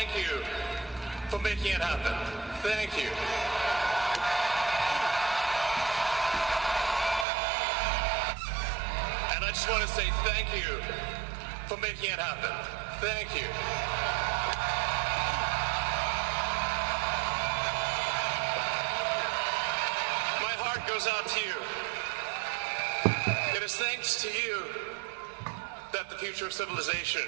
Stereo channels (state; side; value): drops out; left; at 7.2 s